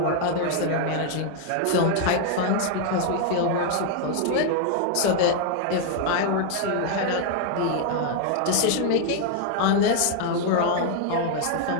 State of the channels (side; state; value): both; different; correlation 0.00